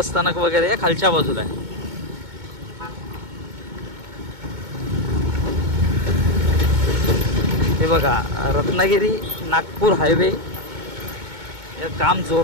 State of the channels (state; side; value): late; left; 2.2 ms